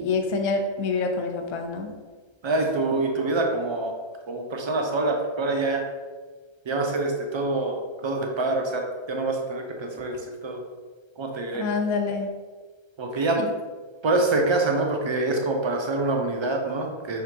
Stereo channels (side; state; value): left; late; 1.3 ms